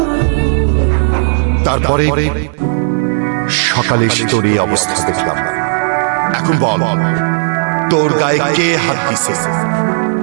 তারপরে সকালে এসে তোর এই অবস্থা দেখলাম। এখন বল, তোর গায়ে কে হাত দিছে?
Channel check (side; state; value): left; silent; digital silence